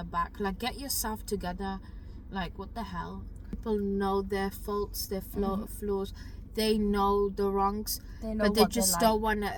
back? Like, get yourself together. Like, what the hell? People know their faults, their flaws. They know the wrongs, know but they what just like. don't want to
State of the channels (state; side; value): identical; both; correlation 1.00